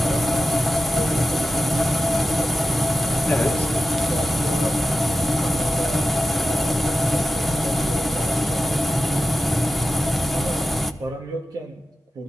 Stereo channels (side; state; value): both; normal; correlation 0.92